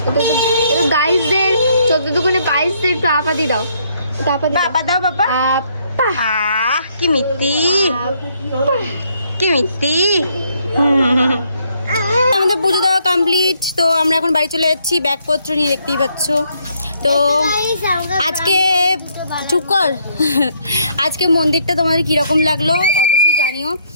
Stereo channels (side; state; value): both; inverted; correlation -0.70